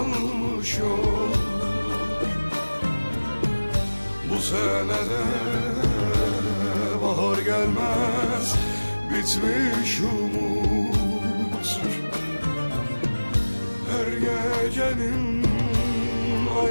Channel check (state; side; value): inverted; both; correlation -1.00